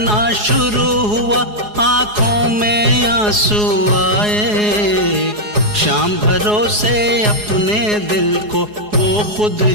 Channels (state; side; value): late; left; 4.8 ms